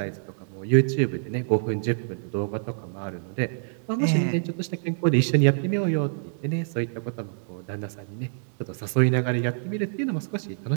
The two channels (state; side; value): silent; left; digital silence